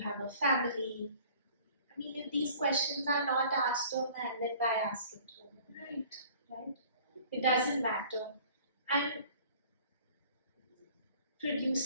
a family? I mean, if these questions are not asked to a man, then why ask it to a woman? Right? It doesn't matter. And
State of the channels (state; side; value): inverted; both; correlation -0.51